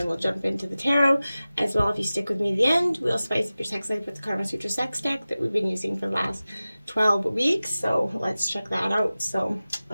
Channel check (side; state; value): both; inverted; correlation -0.96